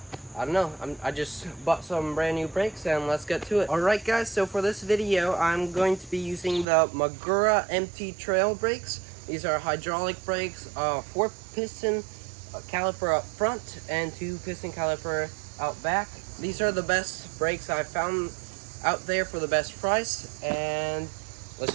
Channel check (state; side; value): drops out; left; at 6.7 s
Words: I don't know, I just bought some brand new brakes and let's get to it. Alright guys, so for this video I'm going to be using the Magura MT Trail brakes. These are hydraulic brakes, 4 piston caliper up front and 2 piston caliper out back. These are the best brakes I've found out there for the best price, and let's